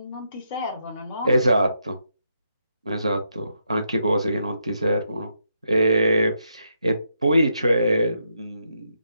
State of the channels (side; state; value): both; inverted; correlation -0.80